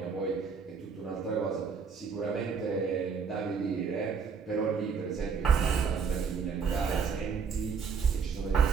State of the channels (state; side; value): quieter; left; 5.9 dB